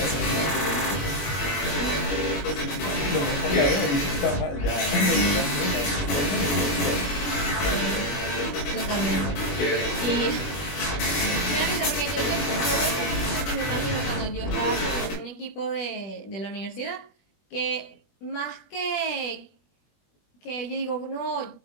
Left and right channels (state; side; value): late; right; 21 ms